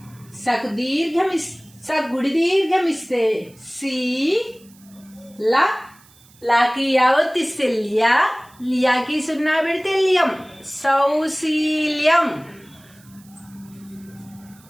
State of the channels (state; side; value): noise; right; hiss, 27 dB below the sound